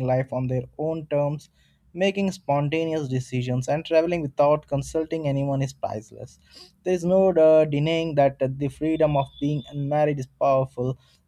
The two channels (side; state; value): both; identical; correlation 1.00